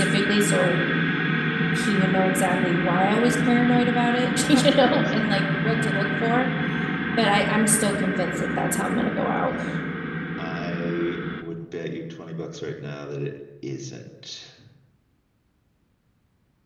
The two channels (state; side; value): identical; both; correlation 1.00